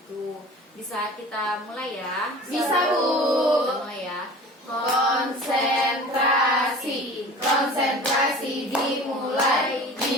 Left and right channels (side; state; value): both; normal; correlation 0.40